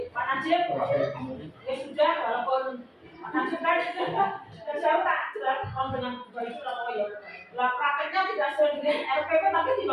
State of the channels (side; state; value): both; identical; correlation 1.00